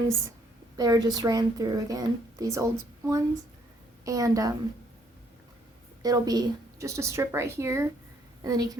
they were just ran through again, these old ones, and it'll be just a strip right here, and then you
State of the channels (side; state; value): both; normal; correlation 0.67